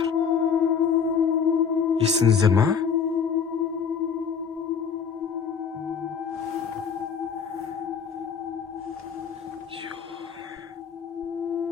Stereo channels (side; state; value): right; quieter; 6.6 dB